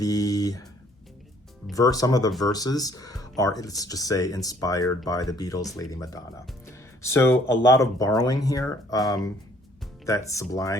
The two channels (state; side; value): normal; both; correlation 0.61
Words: some of the verses are, let's just say, inspired by the Beatles' Lady Madonna. So a lot of borrowing here that